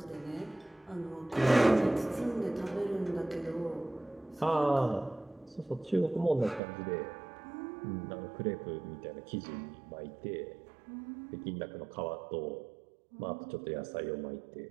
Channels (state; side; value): drops out; left; at 6.6 s